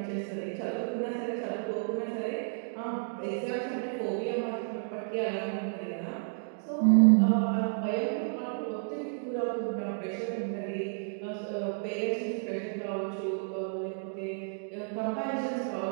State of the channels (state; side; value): silent; left; digital silence